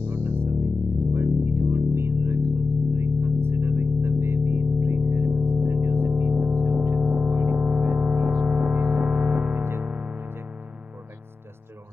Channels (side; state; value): right; quieter; 4.1 dB